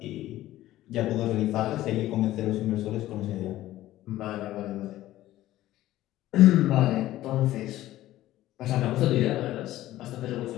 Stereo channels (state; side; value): quieter; right; 14.9 dB